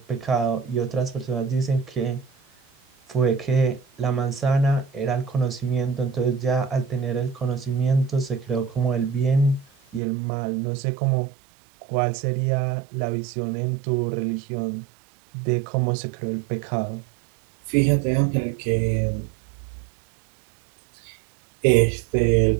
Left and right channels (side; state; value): left; drops out; at 10.0 s